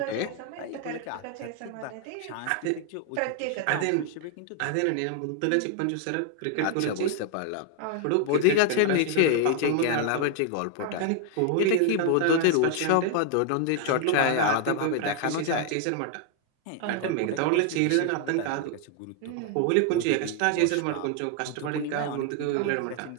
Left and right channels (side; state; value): both; different; correlation 0.00